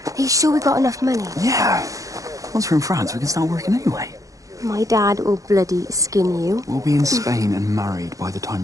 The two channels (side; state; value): left; late; 0.16 ms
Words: Are you sure we got enough money? Yeah. Once we're in France, we can start working anyway. My dad will bloody skin you. We'll be in Spain and married by the time